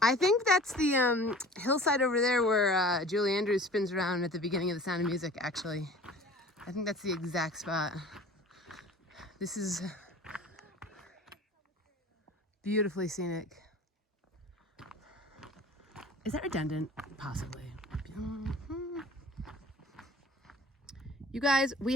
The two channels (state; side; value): normal; both; correlation 0.43